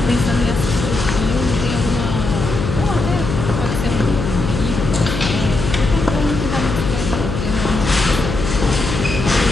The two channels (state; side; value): noise; left; hum, 4 dB below the sound